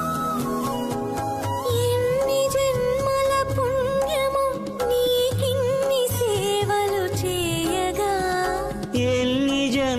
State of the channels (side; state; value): both; identical; correlation 1.00